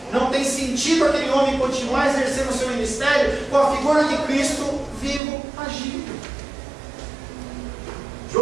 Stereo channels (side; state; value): left; drops out; at 5.2 s